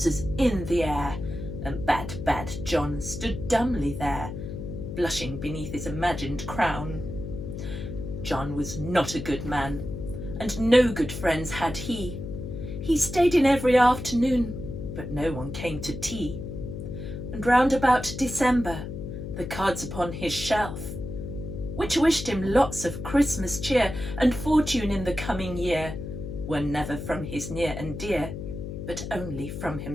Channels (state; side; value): noise; left; hum, 7 dB below the sound